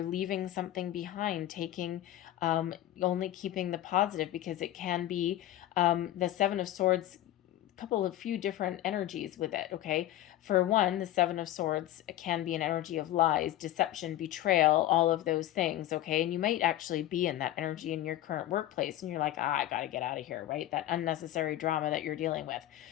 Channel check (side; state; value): right; quieter; 13.9 dB